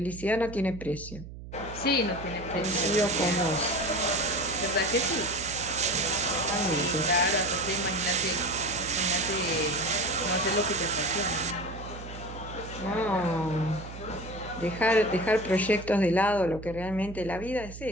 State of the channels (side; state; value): right; noise; hum, 13 dB below the sound